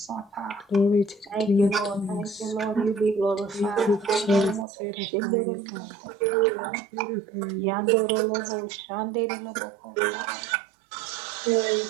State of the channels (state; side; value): drops out; left; at 4.7 s